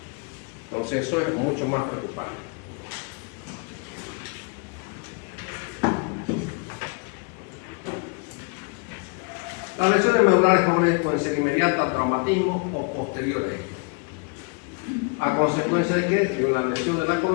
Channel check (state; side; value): quieter; right; 34.6 dB